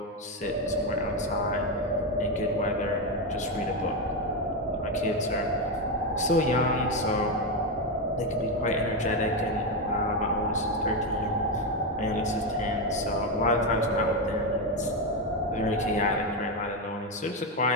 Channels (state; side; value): normal; both; correlation 0.09